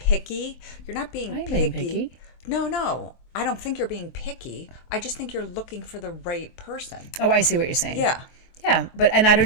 You're not being I ain't picky. being picky. No. I don't think you're being picky. I just think you're looking for the right person. Oh, I see what you're saying. Yeah. Yeah, and I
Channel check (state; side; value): late; right; 23 ms